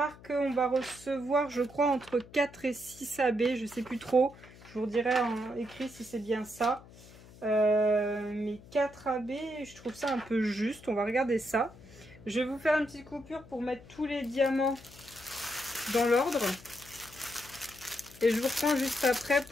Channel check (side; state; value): left; noise; hum, 21 dB below the sound